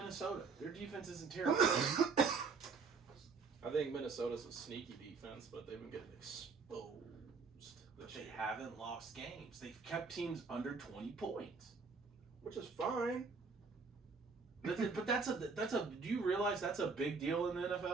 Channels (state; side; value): quieter; left; 4.7 dB